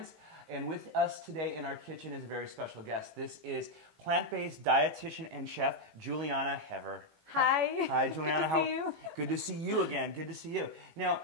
and with us today in our kitchen is a very special guest. This is plant-based dietitian and chef Juliana Hever. Hi. Hi, Juliana. Good to see you. Good to see you again. Good to see you. Now,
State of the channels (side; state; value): left; late; 18 ms